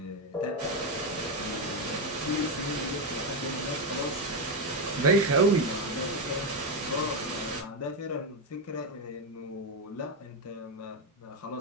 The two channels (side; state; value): both; normal; correlation 0.08